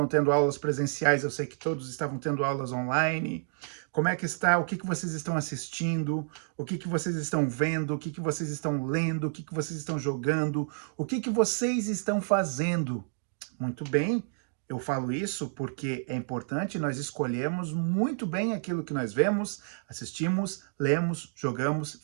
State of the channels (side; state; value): left; silent; digital silence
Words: tendo aulas presenciais, eu sei que todos estavam tendo aulas online. Como é que está? O que vocês estão assistindo? O que vocês estão vendo? O que vocês estão lendo? O que vocês estão jogando? O que vocês estão fazendo? Muito bem. Eu falo isso porque é importante nós escolhermos muito bem aquilo que nós vemos, assistimos, lemos, jogamos,